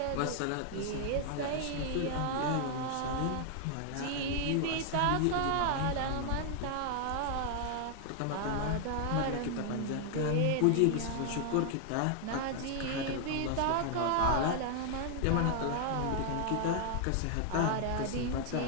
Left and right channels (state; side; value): different; both; correlation 0.00